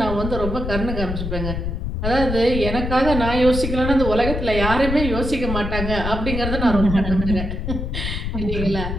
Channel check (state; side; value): noise; left; rumble, 3 dB below the sound